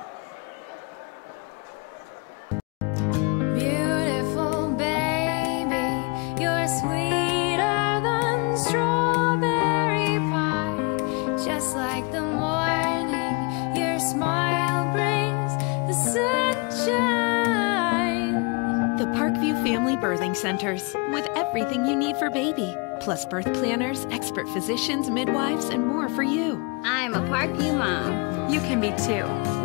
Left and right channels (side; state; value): right; quieter; 31.0 dB